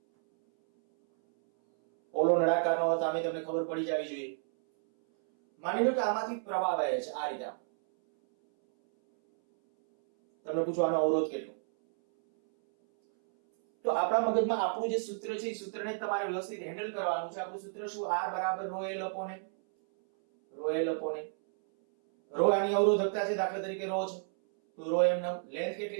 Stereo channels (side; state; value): left; silent; 57 dB below the other